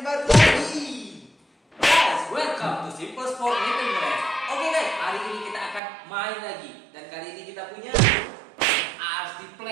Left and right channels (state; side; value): drops out; left; at 5.8 s